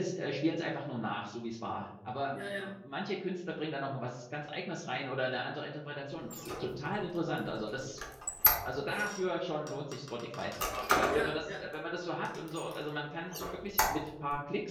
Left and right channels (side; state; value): both; identical; correlation 1.00